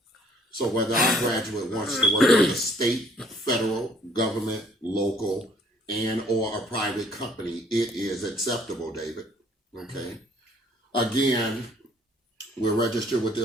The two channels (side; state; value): both; normal; correlation 0.60